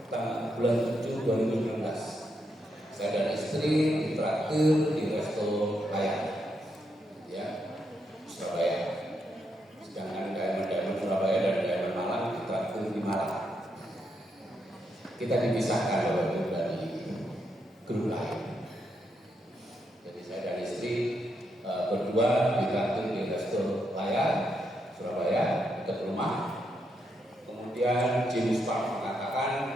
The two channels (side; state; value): both; normal; correlation 0.80